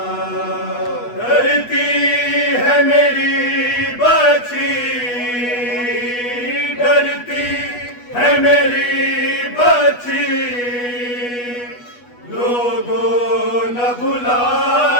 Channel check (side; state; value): right; late; 8.2 ms